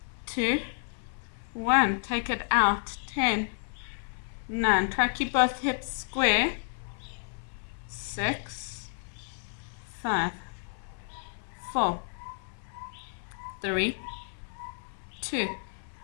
2, 1. Take it out. 10, 9. Try to keep both hips square. 6, 5, 4, 3, 2,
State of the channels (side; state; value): right; silent; 57 dB below the other